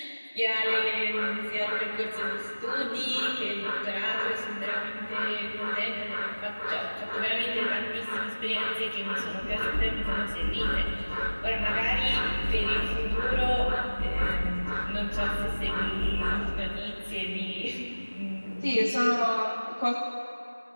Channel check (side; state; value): both; inverted; correlation -1.00